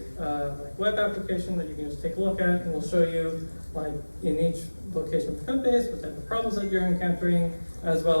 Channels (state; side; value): inverted; both; correlation -1.00